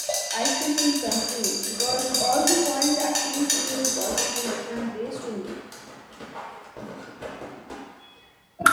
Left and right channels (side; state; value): both; identical; correlation 1.00